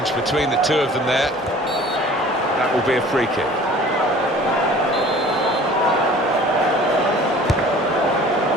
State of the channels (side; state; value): both; normal; correlation 0.47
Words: between the two of them there. That will be a free kick.